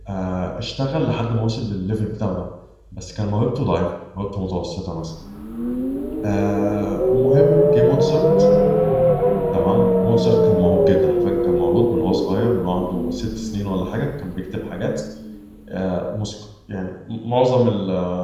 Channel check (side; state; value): both; identical; correlation 1.00